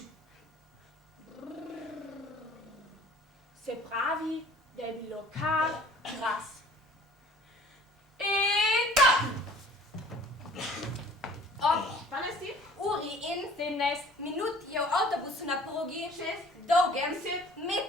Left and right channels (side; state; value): both; normal; correlation 0.51